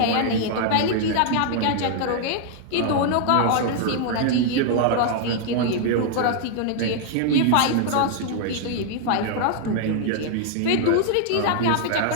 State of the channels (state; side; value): different; both; correlation 0.00